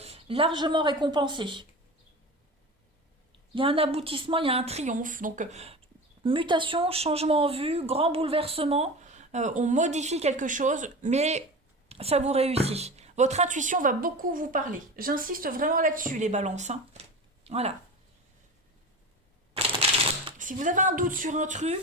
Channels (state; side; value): normal; both; correlation 0.31